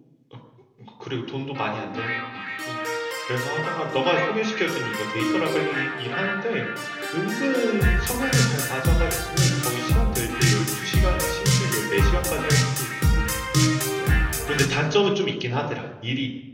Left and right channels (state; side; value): identical; both; correlation 1.00